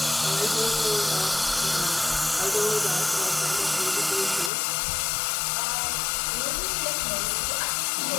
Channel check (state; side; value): drops out; right; at 4.5 s